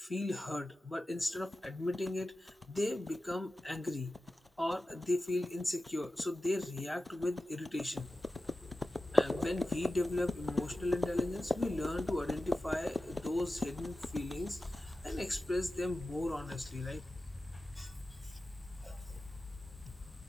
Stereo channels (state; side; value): normal; both; correlation 0.94